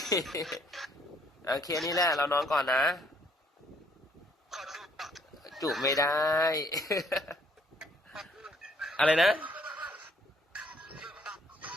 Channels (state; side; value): normal; both; correlation 0.65